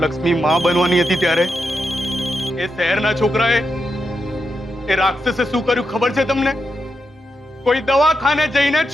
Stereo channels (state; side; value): normal; both; correlation 0.85